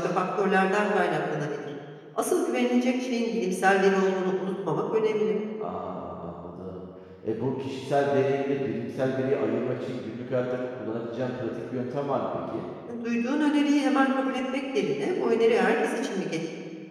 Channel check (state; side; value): identical; both; correlation 1.00